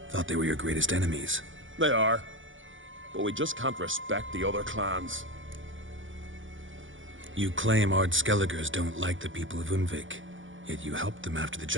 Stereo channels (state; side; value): late; left; 0.56 ms